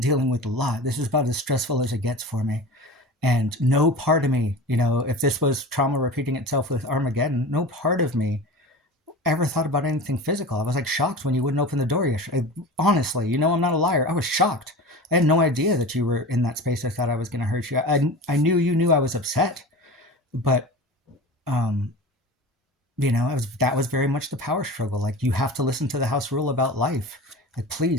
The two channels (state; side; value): normal; both; correlation 0.33